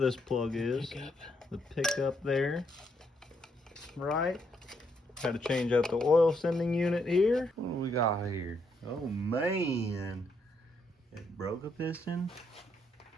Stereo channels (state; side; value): normal; both; correlation 0.75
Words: plug is. The pickup there. Right. Had to change out the oil sending unit here. What do we got here? Oh man. It broke a piston.